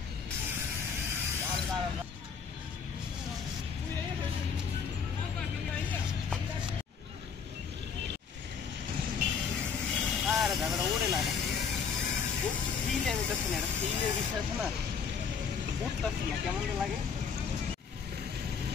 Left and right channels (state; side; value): quieter; right; 6.3 dB